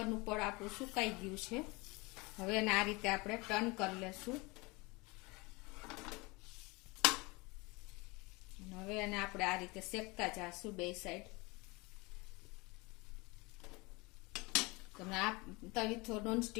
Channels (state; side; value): quieter; right; 25.6 dB